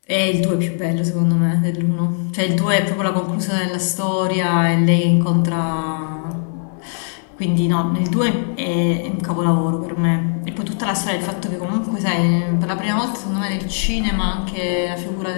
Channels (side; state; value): right; silent; digital silence